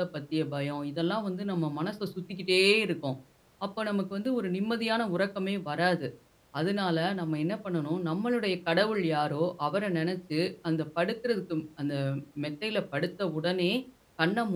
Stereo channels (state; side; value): identical; both; correlation 1.00